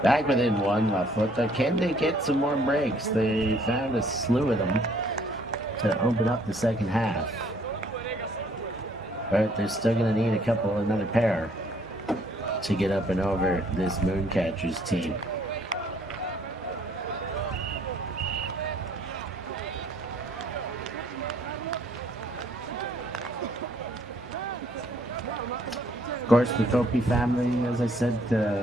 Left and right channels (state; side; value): normal; both; correlation 0.63